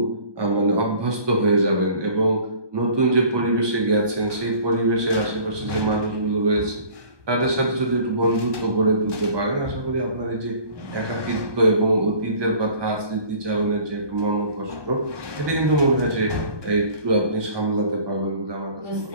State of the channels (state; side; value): late; left; 1.2 ms